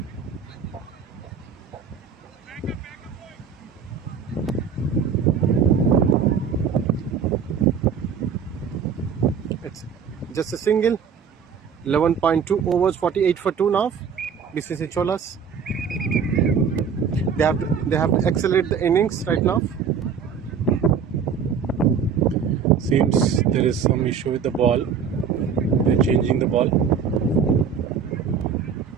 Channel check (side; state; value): left; quieter; 6.7 dB